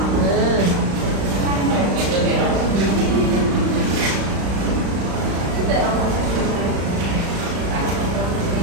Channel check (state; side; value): late; left; 35 ms